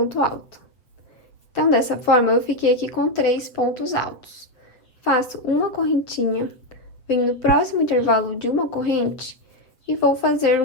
alto. Então, dessa forma, eu fiquei aqui com 3 pontos altos. Faço uma correntinha, venho no próximo intervalo de uma corrente e vou fazer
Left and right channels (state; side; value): late; right; 7.9 ms